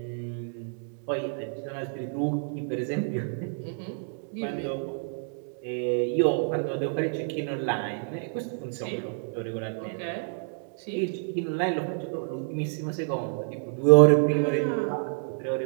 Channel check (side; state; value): left; silent; 59 dB below the other